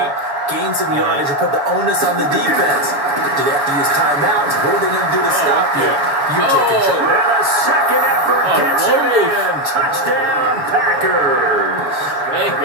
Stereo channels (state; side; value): late; left; 6.9 ms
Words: gain some yardage, and put the onus on the defense. Do they have to use timeouts? What are they going to do to stop you? You take it, Joe. And a second effort gets him in. Touchdown, Packers.